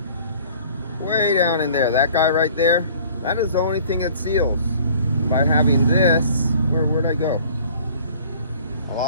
way down in there, that guy right there, that is the only thing that seals. By having this, where'd I go? I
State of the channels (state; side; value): inverted; both; correlation -0.51